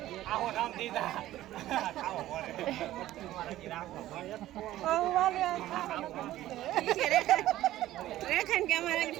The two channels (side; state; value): left; quieter; 14.5 dB